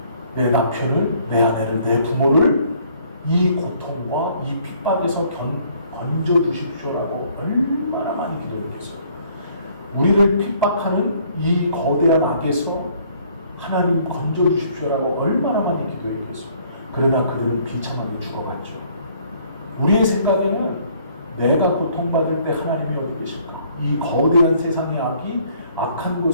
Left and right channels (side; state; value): both; inverted; correlation -0.62